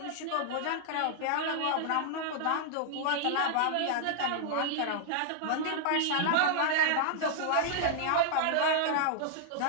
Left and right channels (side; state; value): both; different; correlation -0.01